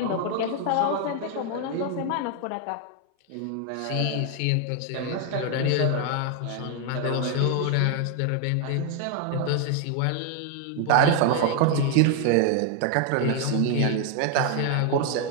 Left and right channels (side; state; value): both; different; correlation 0.01